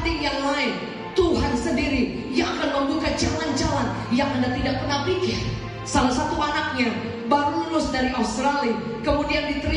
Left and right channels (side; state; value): both; identical; correlation 1.00